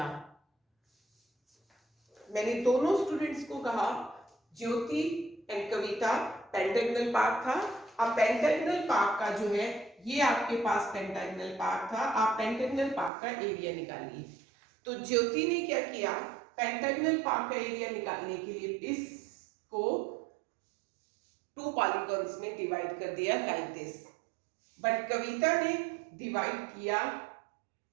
मैंने दोनों students को कहा ज्योति एंड कविता पेंटागनल पार्क था. अब पेंटागनल पार्क का जो है ये आपके पास पेंटागनल पार्क था. आप पेंटागनल पार्क का एरिया निकालिए. तो ज्योति ने क्या किया, पेंटागनल पार्क का एरिया निकालने के लिए इसको टू पॉलीगॉन्स में डिवाइड कर दिया लाइक दिस. बट कविता ने डिवाइड किया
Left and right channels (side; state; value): left; drops out; at 13.1 s